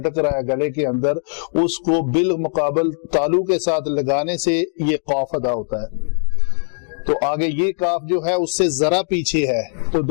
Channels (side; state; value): right; silent; 65 dB below the other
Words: رہا ہے گلے کے اندر، اس کو بالمقابل تالو کے ساتھ لگانے سے یہ قاف ادا ہوتا ہے۔ تو آگے یہ کاف جو ہے اس سے ذرا پیچھے ہے، تو